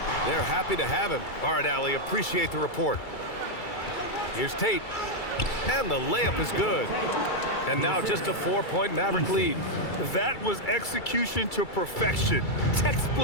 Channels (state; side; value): late; right; 2.3 ms